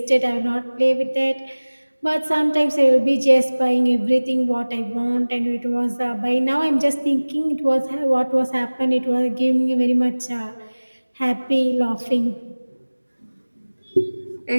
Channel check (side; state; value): both; inverted; correlation -1.00